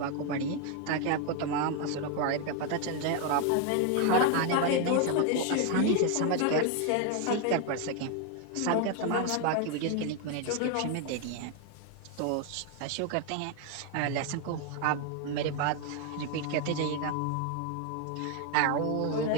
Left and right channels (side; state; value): both; different; correlation 0.01